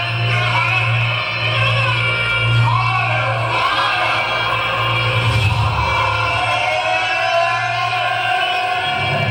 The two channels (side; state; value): both; identical; correlation 1.00